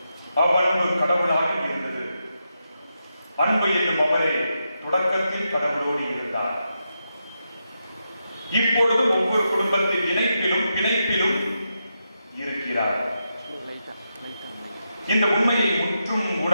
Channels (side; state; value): both; inverted; correlation -0.86